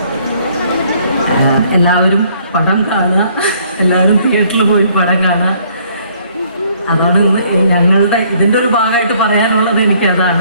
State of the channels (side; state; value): both; inverted; correlation -0.63